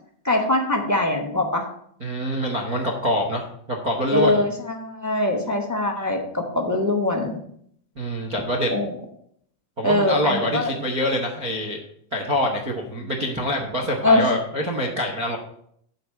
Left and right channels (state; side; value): late; left; 4.4 ms